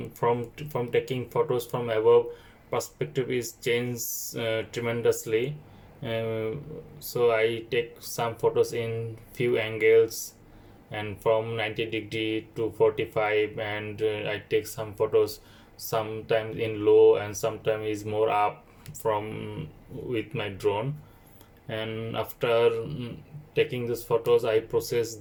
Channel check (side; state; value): both; identical; correlation 1.00